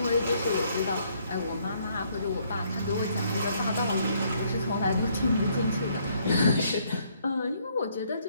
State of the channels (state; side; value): inverted; both; correlation -0.68